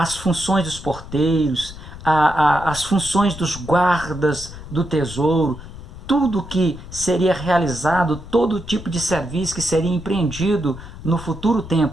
funções dos porteiros, as funções dos guardas do tesouro, tudo que seria realizado, todo tipo de serviço que seria empreendido no futuro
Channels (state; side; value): noise; left; rumble, 14 dB below the sound